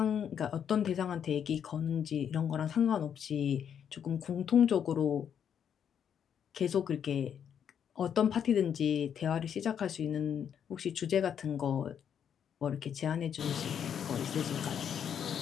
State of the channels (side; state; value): right; quieter; 8.4 dB